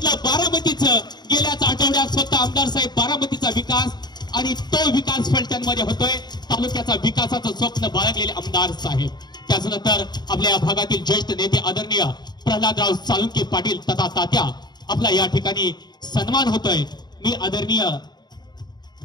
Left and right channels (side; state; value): right; late; 0.20 ms